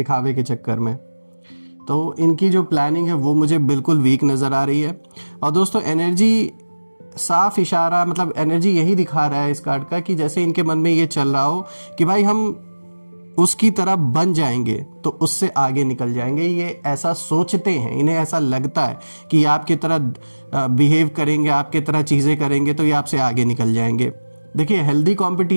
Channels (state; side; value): inverted; both; correlation -1.00